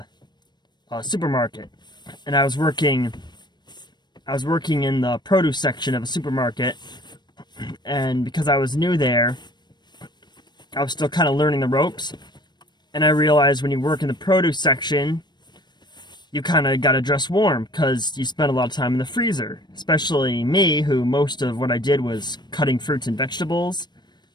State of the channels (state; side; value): late; right; 0.21 ms